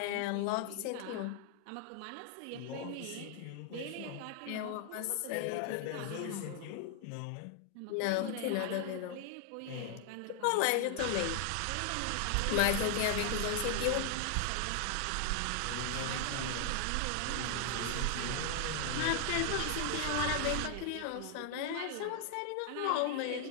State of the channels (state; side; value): different; both; correlation 0.00